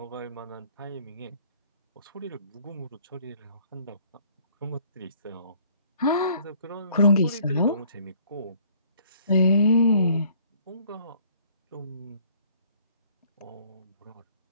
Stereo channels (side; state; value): both; inverted; correlation -0.59